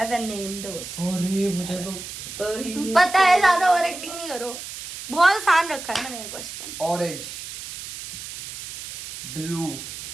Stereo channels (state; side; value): noise; right; hiss, 10 dB below the sound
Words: and name those? अरे मुझे तो पता ही नहीं। पता है, ज्यादा ओवर एक्टिंग नहीं करो, बहुत आसान रखा है मैंने ये question. Orange, blue,